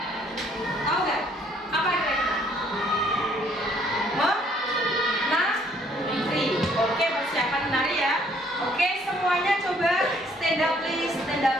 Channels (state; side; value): normal; both; correlation 0.64